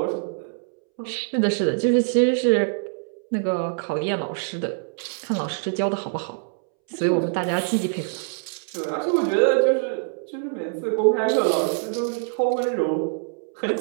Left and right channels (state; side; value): silent; left; 62 dB below the other